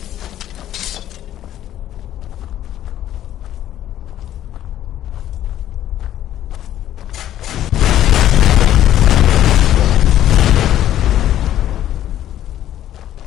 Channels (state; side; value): quieter; right; 12.1 dB